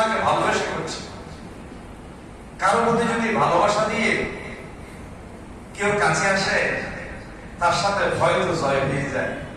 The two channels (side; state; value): both; identical; correlation 1.00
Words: ভালোবেসে করছি। কারোর মধ্যে যদি ভালোবাসা দিয়ে কেউ কাছে আসে তার সাথে ভয় তো জয় হয়ে যায়।